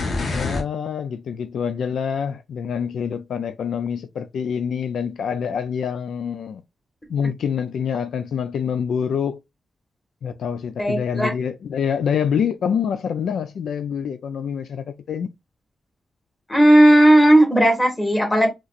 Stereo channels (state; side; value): normal; both; correlation 0.89